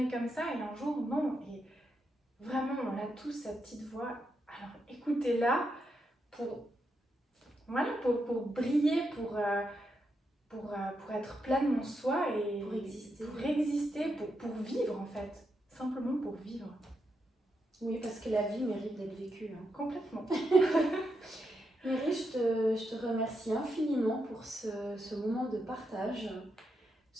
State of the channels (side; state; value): both; normal; correlation 0.83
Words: comme ça, et un jour, non. Et vraiment, on a tous cette petite voix, alors écoutez-la pour briller, pour être pleinement soi et pour exister, pour vivre en fait, simplement pour vivre. Oui, parce que la vie mérite d'être vécue. Complètement. Méry, je te remercie infiniment pour ce moment de partage,